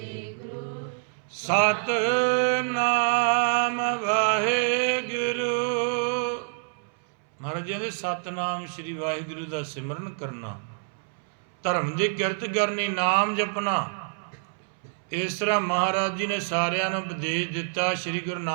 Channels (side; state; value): left; silent; 60 dB below the other